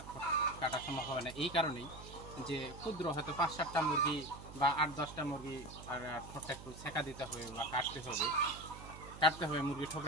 ঠোঁট কাটা সম্ভব হয় না এই কারণেই যে ক্ষুদ্র হয়তো 5-7টা মুরগি বা 8-10টা মুরগি আর ঠোঁটটা একটু ছেঁকা দিতে হবে বা কাটতে হবে মুরগি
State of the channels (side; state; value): right; noise; hum, 14 dB below the sound